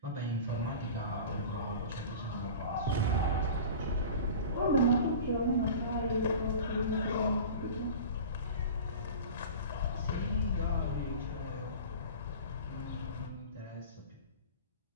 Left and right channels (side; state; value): both; inverted; correlation -0.36